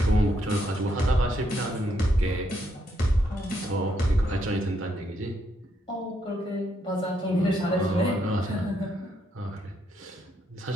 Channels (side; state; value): both; normal; correlation 0.76